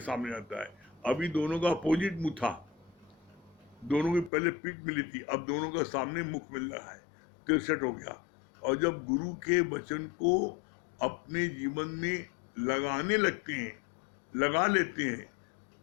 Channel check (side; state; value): right; drops out; at 4.3 s